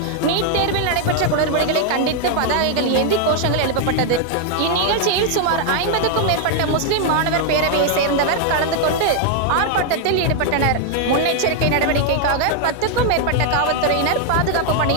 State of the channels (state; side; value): different; both; correlation 0.00